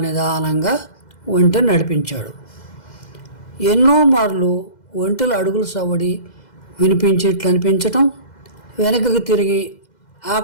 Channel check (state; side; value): late; right; 2.0 ms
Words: నిదానంగా ఒంటెను నడిపించాడు. ఎన్నో మార్లు ఒంటెల అడుగుల సవడి వినిపించేట్లు అనిపించటం, వెనకకు తిరిగి